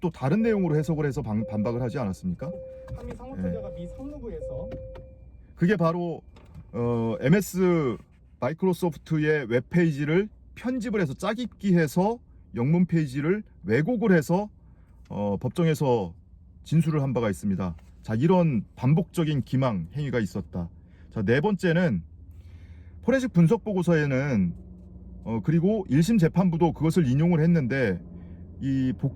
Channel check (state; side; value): identical; both; correlation 1.00